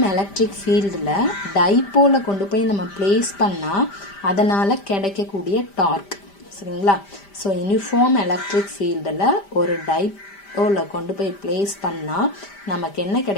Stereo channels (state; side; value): late; right; 5.1 ms